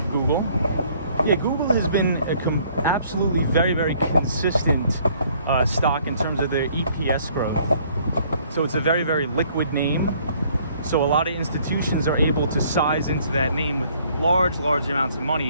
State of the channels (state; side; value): inverted; both; correlation -0.61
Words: Google. Yeah, Google has been absolutely very consistent stock in terms of their EPS growth. So it's a very, very liquid name. So a lot of institutions are able to size into that name with large amounts of